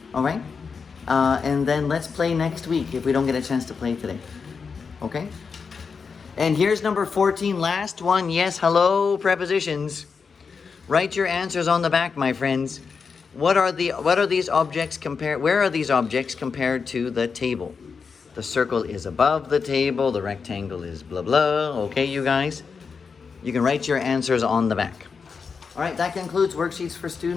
All right? And then let's play next week if we don't get a chance to play today. Okay? And here's number 14, last one. Yes, hello, prepositions. Write your answers on the back, my friends. What are these objects compared? Where are these objects compared to the table? The circle is above the table. The rectangle is blah, blah. Okay, you guys? You can write your answers on the back. All right, that concludes Worksheets for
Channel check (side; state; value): right; quieter; 5.5 dB